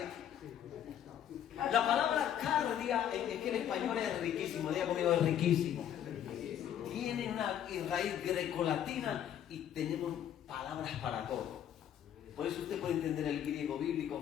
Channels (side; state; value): right; quieter; 10.1 dB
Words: La palabra cardia es que en español es riquísimo, diga conmigo, es riquísimo. Tiene una raíz grecolatina y tenemos palabras para todo. Por eso usted puede entender el griego